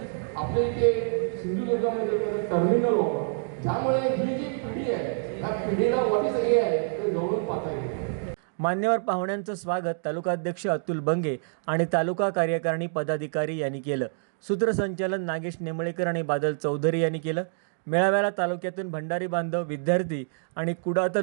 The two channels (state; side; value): silent; left; digital silence